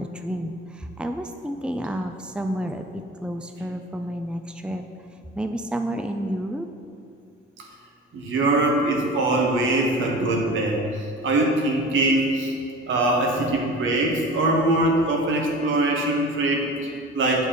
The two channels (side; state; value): both; normal; correlation 0.36